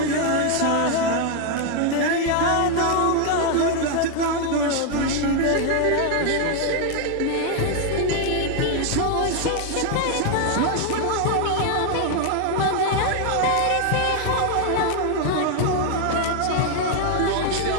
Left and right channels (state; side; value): different; both; correlation 0.00